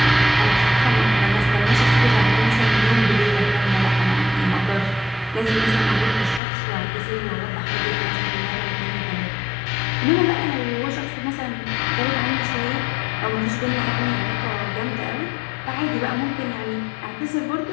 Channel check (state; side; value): drops out; right; at 6.4 s